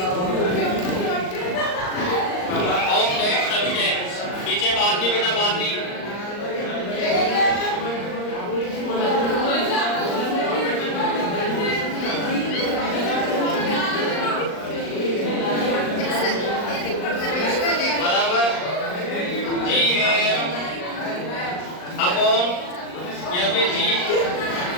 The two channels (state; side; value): late; right; 39 ms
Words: of that substance। पीछे बात नहीं बेटा, बात नहीं। बराबर GAM अपॉन या फिर